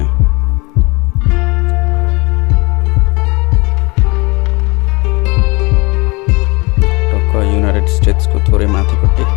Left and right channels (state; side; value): quieter; right; 26.0 dB